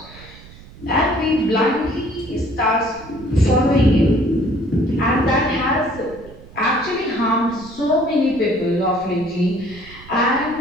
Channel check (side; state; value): right; noise; rumble, 20 dB below the sound